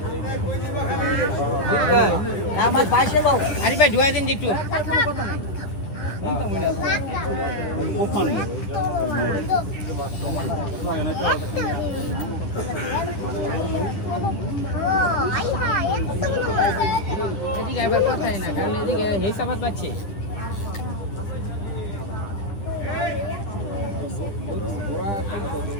আমার বাইকে দাও আরে ভাই ধুয়া দিন একটু এদিকে আবার কথাই না কারণ এদিকে হিসাবাত পাচ্ছে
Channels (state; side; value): late; right; 9.9 ms